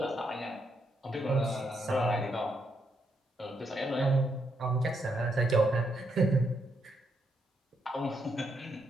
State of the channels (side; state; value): both; normal; correlation 0.78